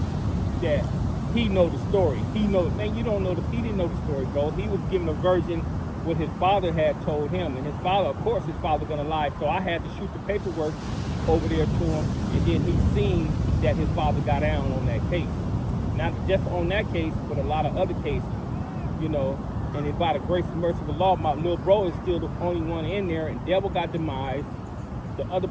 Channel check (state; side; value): identical; both; correlation 1.00